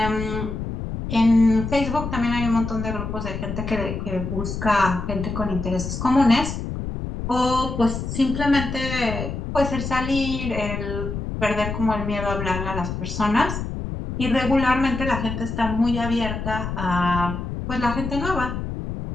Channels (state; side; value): noise; left; rumble, 5 dB below the sound